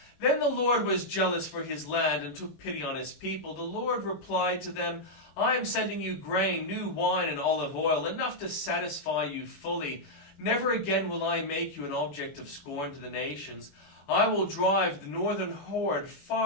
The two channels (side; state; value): right; late; 21 ms